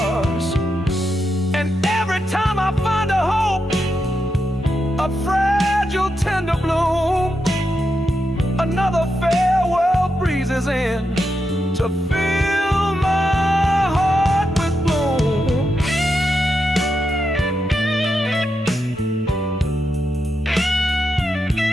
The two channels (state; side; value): normal; both; correlation 0.85